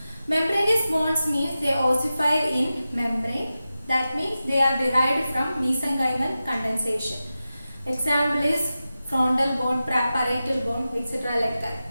Membranous bones means they ossify in membrane. That means they are derived from mesenchymal condensation. Example is frontal bone, parietal bone, etc. like that.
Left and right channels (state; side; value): inverted; both; correlation -0.93